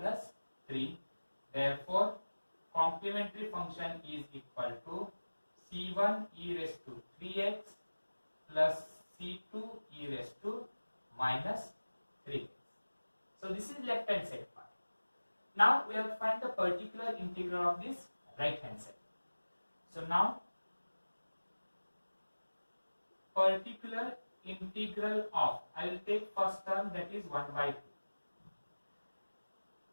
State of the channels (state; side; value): inverted; both; correlation -1.00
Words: 3. Therefore, complementary function is equal to c1 e raised to 3x plus c2 e raised to minus 3x. So this is left hand side part. Now we have to find the particular integral of this right hand side. So now particular integral of, I will take first term, that is 1 by 2.